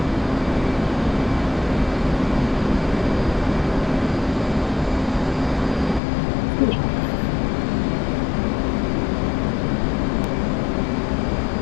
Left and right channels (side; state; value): right; drops out; at 6.0 s